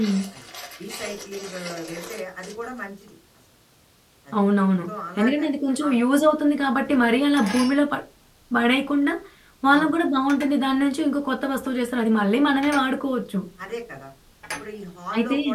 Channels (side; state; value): both; identical; correlation 1.00